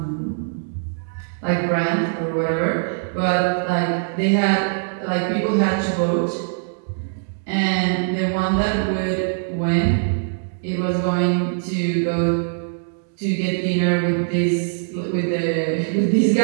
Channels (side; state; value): left; silent; digital silence